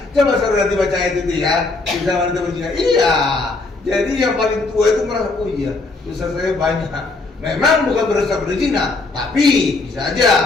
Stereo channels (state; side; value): quieter; right; 3.5 dB